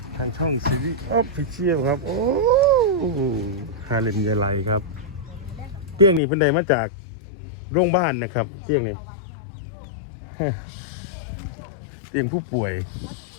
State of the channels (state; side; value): drops out; right; at 6.2 s